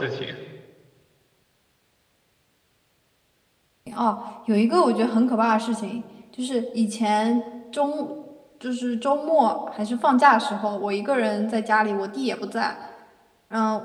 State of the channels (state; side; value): identical; both; correlation 1.00